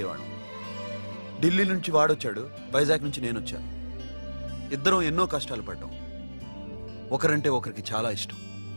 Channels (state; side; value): inverted; both; correlation -1.00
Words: ఢిల్లీ నుంచి వాడొచ్చాడు, వైజాగ్ నుంచి నేను వచ్చాను. ఇద్దరం ఎన్నో కష్టాలు పడ్డాం. ఒకరంటే ఒకరికి చాలా ఇష్టం.